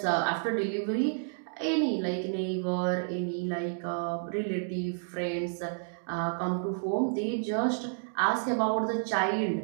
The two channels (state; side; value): silent; left; digital silence